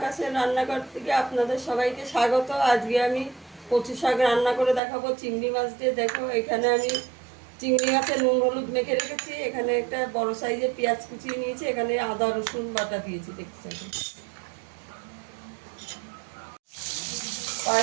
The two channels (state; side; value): drops out; left; at 4.8 s